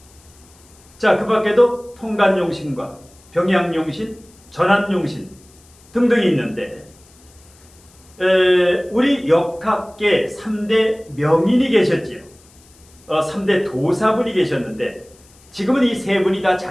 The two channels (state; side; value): noise; left; hiss, 28 dB below the sound